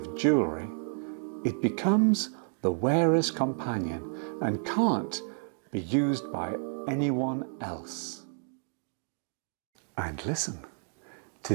jewellery. It becomes the wearer's companion and can't be used by anyone else. And listen to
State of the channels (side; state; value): left; silent; 57 dB below the other